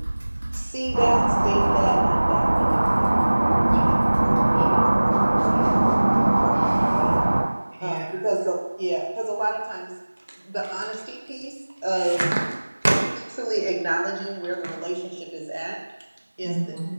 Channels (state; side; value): inverted; both; correlation -1.00